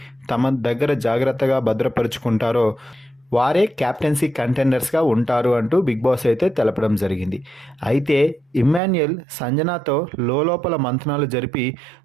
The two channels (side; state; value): left; drops out; at 8.8 s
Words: తమ దగ్గర జాగ్రత్తగా భద్రపరుచుకుంటారో వారే క్యాప్టెన్సీ కంటెండర్స్గా ఉంటారు అంటూ బిగ్ బాస్ అయితే తెలపడం జరిగింది. అయితే ఇమ్మాన్యుయల్ సంజనాతో లోపల మంతనాలు జరిపి